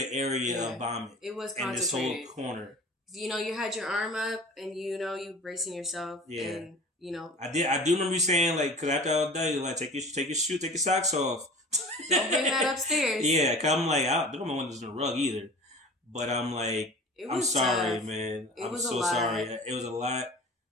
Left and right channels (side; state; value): both; normal; correlation 0.40